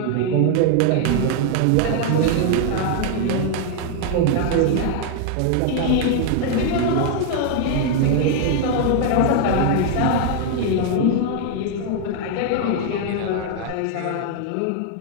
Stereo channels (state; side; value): different; both; correlation 0.00